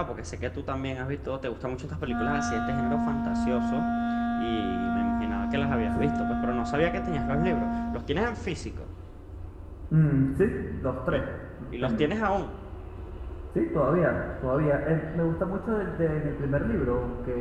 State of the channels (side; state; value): both; identical; correlation 1.00